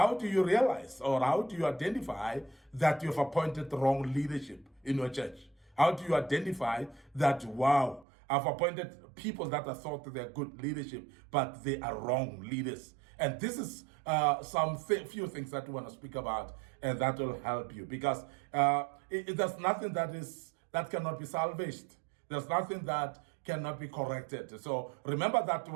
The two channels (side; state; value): left; drops out; at 8.1 s